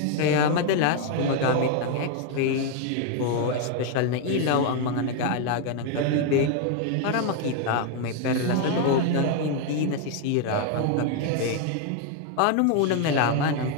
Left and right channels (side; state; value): both; different; correlation 0.01